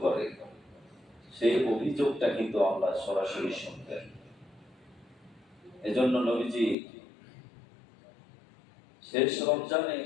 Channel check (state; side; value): drops out; right; at 6.8 s